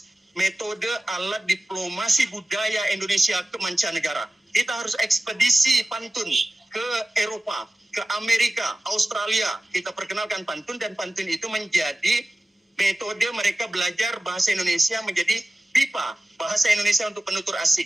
metode, alat diplomasi budaya Indonesia ke mancanegara. Kita harus ekspedisi pantun ke Eropa, ke Amerika, Australia. Kita perkenalkan pantun, dan pantun itu menjadi metode mereka belajar bahasa Indonesia, menjadi BIPA, bahasa Indonesia untuk penutur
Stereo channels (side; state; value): both; normal; correlation 0.97